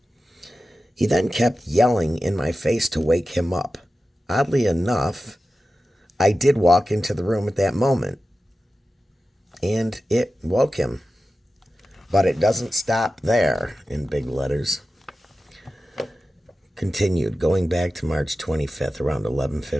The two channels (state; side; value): normal; both; correlation 0.94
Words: He then kept yelling in my face to wake him up. Oddly enough, I did walk into the room at that moment, and it woke him. But it doesn't stop there, in big letters. Continued, going back to March 25th, around